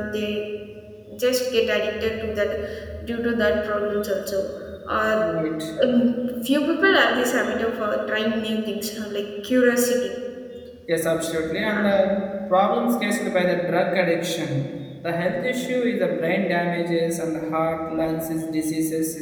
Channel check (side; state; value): both; identical; correlation 1.00